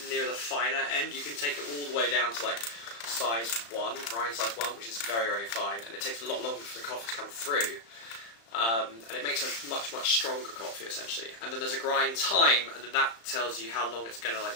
near the finer end. You can take it all the way down to like size 1, grind size 1, which is very, very fine, and it takes a lot longer for the coffee to come through. And it makes a much, much stronger coffee essentially. And then there's a grind time, and then that tells you how long it's going to like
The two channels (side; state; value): right; late; 35 ms